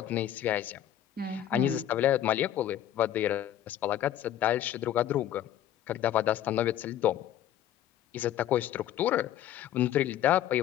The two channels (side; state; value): right; quieter; 11.6 dB